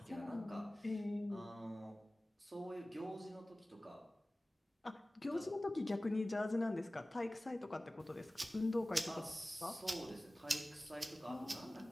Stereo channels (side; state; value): both; normal; correlation 0.97